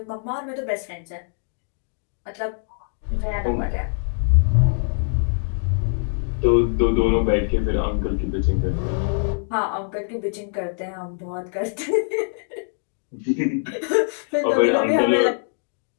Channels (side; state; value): right; silent; 63 dB below the other